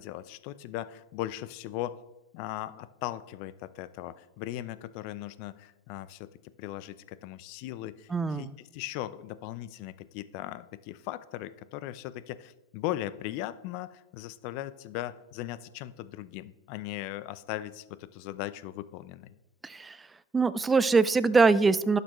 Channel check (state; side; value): normal; both; correlation 0.68